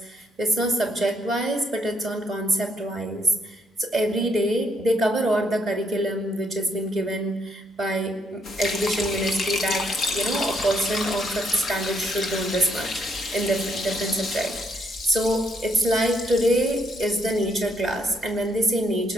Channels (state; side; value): normal; both; correlation 0.72